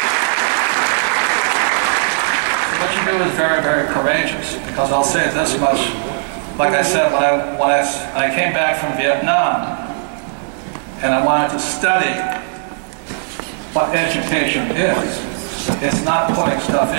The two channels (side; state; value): left; silent; digital silence